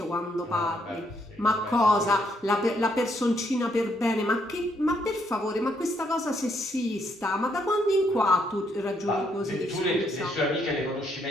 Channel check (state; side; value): normal; both; correlation 0.73